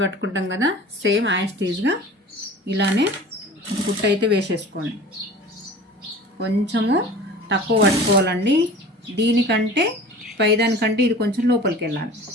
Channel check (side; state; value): both; normal; correlation 0.41